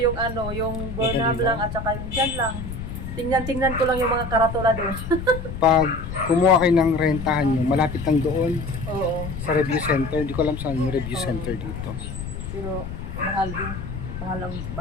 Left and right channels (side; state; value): left; noise; rumble, 7 dB below the sound